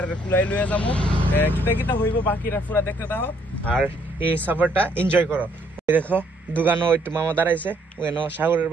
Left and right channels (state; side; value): normal; both; correlation 0.67